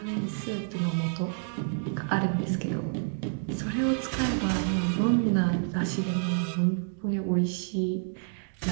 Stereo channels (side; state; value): left; silent; digital silence